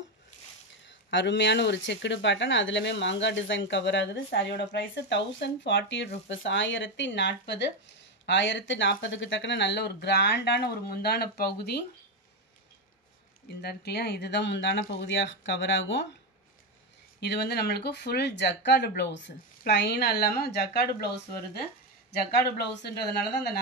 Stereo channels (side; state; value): both; normal; correlation 0.10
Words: அருமையான ஒரு செக்குடு பேட்டர்ன், அதுலேயுமே மாங்காய் டிசைன் கவர் ஆகுது. சாரியோட ப்ரைஸு 1040 rupees. 1040. 1040க்கு தக்கன நல்ல ஒரு கிராண்டான ஒரு முந்தான பகுதி இந்த இருக்கு இல்லையா, இதுதான் முந்தான பகுதியாக கவர் ஆகும். இது வந்து நம்மளுக்கு ஃபுல் ஜக்கார்டு ப்ளவுஸு, ப்ளைனாக இல்லாமல் ஜக்கார்டு ப்ளவுஸ் வருது. ஜக்கார்டு ப்ளவுஸுன்றதுனால தான் அந்த